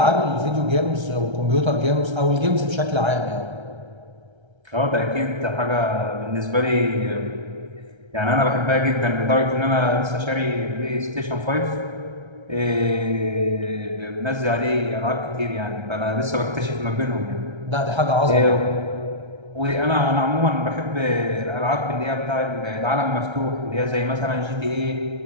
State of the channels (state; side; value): late; left; 1.3 ms